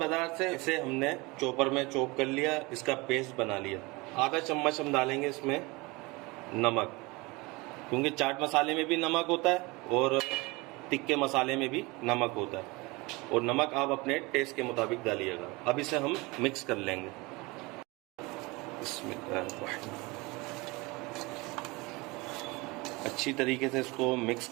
से, इसे हमने चॉपर में चॉप कर लिया, इसका पेस्ट बना लिया। आधा चम्मच हम डालेंगे इसमें नमक, क्योंकि चाट मसाले में भी नमक होता है और तिक्के मसाले में भी नमक होता है, और नमक आप अपने टेस्ट के मुताबिक डालिएगा। अब इसे हम मिक्स कर लेंगे। अच्छी तरीके से इसको मिक्स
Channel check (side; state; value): left; quieter; 24.5 dB